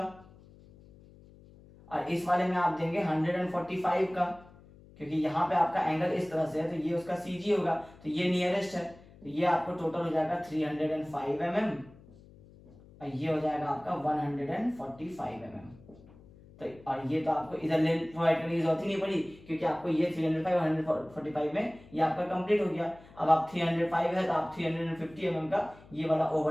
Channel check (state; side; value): noise; left; hum, 23 dB below the sound